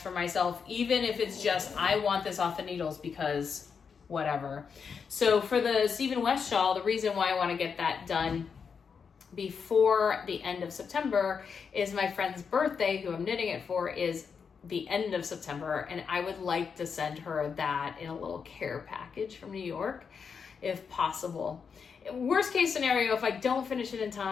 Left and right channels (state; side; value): quieter; right; 6.1 dB